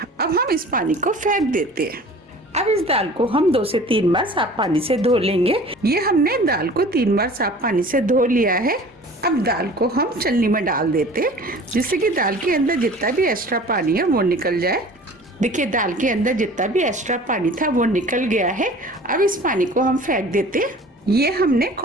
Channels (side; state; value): both; normal; correlation 0.44